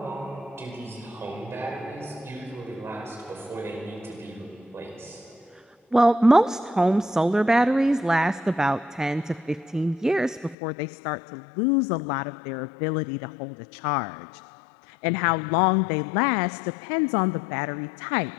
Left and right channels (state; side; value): drops out; right; at 10.6 s